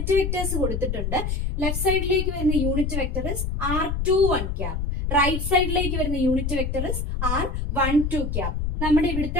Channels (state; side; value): noise; left; rumble, 2 dB below the sound